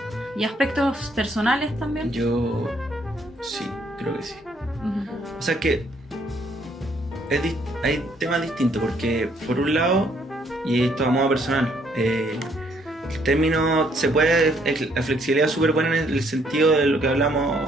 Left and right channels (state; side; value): normal; both; correlation 0.68